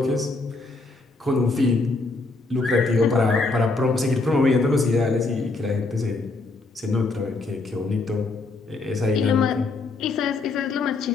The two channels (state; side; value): quieter; right; 3.6 dB